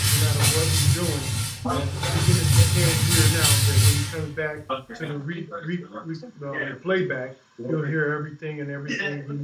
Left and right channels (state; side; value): identical; both; correlation 1.00